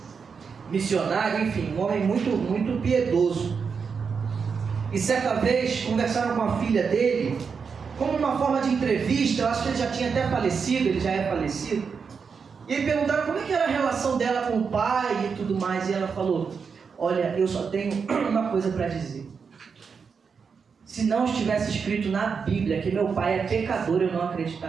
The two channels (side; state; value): left; quieter; 5.8 dB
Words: missionário, enfim, um homem muito piedoso. E certa vez conversaram com a filha dele, como uma forma de entrevista. Eu acho que ele já tinha até falecido, ele já é falecido. E aí perguntaram como é que era a relação dela com o pai e tudo mais. E ela falou: olha, eu só tenho uma coisa para dizer. Se não estivesse escrito na Bíblia que meu pai é pecador, eu não